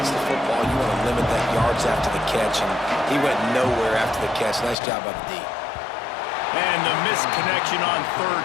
the football, you want to limit that yards after the catch, and he went nowhere after the catch. Nice job by the D. And the misconnection on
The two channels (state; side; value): drops out; right; at 4.8 s